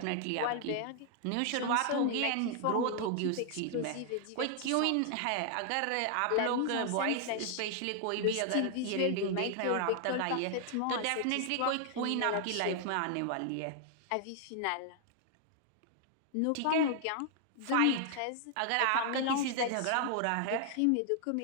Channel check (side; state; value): both; different; correlation 0.00